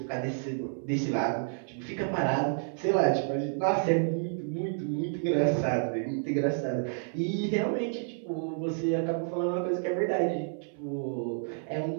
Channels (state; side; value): silent; left; 57 dB below the other